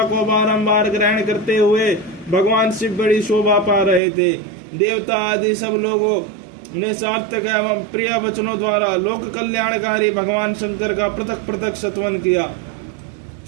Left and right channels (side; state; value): left; drops out; at 4.0 s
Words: को बारंबार ग्रहण करते हुए भगवान शिव बड़ी शोभा पा रहे थे। देवता आदि सब लोगों ने सार्थक एवं प्रिय वचनों द्वारा लोक कल्याणकारी भगवान शंकर का पृथक पृथक सत्वन किया।